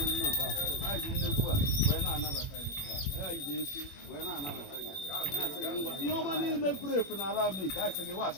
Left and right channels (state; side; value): late; right; 21 ms